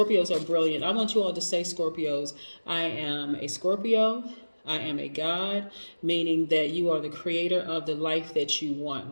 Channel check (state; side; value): inverted; both; correlation -1.00